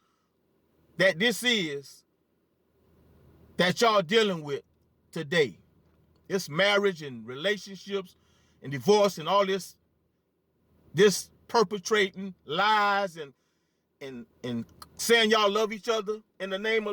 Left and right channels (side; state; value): both; identical; correlation 1.00